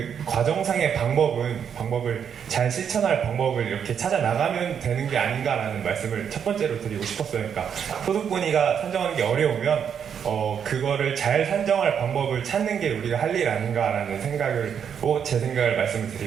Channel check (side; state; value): left; quieter; 7.8 dB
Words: 과정상의 방법을 잘 실천할 방법을 이렇게 찾아 나가면 되는 게 아닌가라는 말씀을 첫 번째로 드리고 싶었어요. 그러니까 소득분위가 산정하는 게 어려우면 그거를 잘 산정할 방법을 찾는 게 우리가 할 일 아닌가라는 제 생각을 말씀을